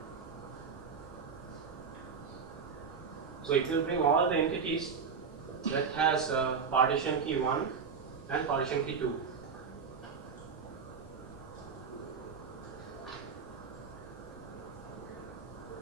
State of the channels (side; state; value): left; quieter; 5.8 dB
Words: So it will bring all the entities that has partition key 1 and partition key 2.